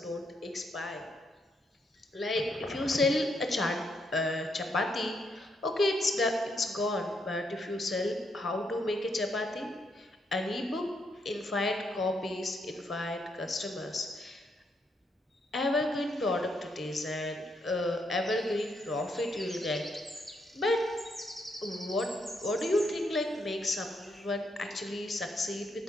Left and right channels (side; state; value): both; normal; correlation 0.77